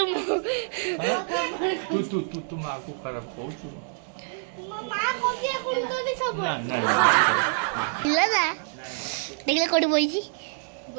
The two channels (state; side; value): silent; left; digital silence